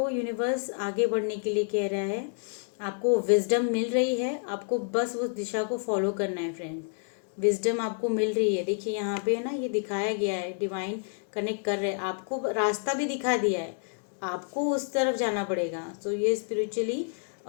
यूनिवर्स आगे बढ़ने के लिए कह रहा है, आपको विजडम मिल रही है, आपको बस उस दिशा को फॉलो करना है फ्रेंड्स। विजडम आपको मिल रही है। देखिए यहाँ पे ना ये दिखाया गया है, डिवाइन कनेक्ट कर रहे हैं, आपको रास्ता भी दिखा दिया है, आपको उस तरफ जाना पड़ेगा। तो ये स्पिरिचुअली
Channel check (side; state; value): right; silent; 59 dB below the other